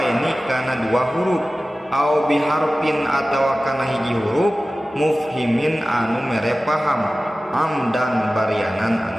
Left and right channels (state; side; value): normal; both; correlation 0.96